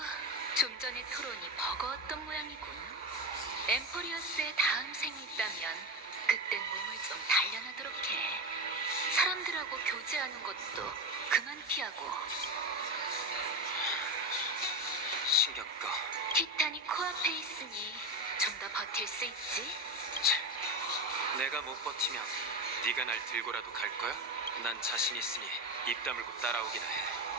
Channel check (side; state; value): both; normal; correlation 0.18